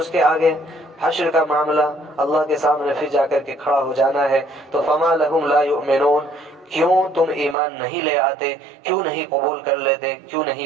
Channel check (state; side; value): drops out; left; at 7.6 s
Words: کے آگے حشر کا معاملہ، اللہ کے سامنے پھر جا کر کے کھڑا ہو جانا ہے۔ تو فما لہم لا یؤمنون، کیوں تم ایمان نہیں لے آتے، کیوں نہیں قبول کر لیتے، کیوں